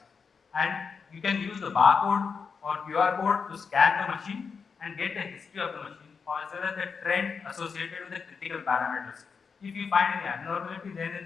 and you can use the barcode or QR code to scan the machine and get the history of the machine, or as well as the trend associated with the critical parameters. If you find any abnormality, then in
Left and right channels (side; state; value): right; quieter; 5.6 dB